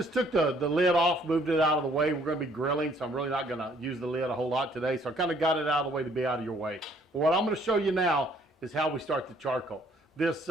took the lid off, moved it out of the way. We're going to be grilling, so I'm really not going to use the lid a whole lot today. So I kind of got it out of the way to be out of your way. But what I'm going to show you now is how we start the charcoal. This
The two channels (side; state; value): both; normal; correlation 0.63